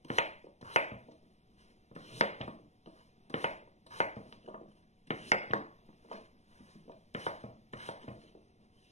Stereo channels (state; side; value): late; right; 0.33 ms